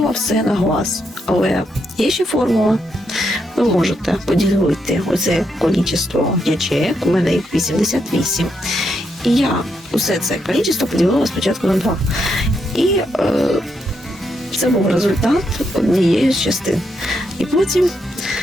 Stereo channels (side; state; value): both; normal; correlation 0.80